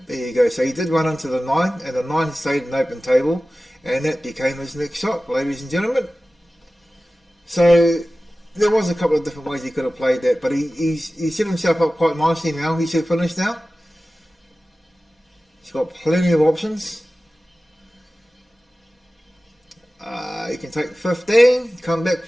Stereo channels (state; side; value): normal; both; correlation 0.96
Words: there you go. So he did run into the 9, and the 9 stayed an open table, and that became his next shot, ladies and gentlemen. So there was a couple of different ways he could have played that, but he set himself up quite nicely now. He should finish now. He's got plenty of options. He can take the 15, come back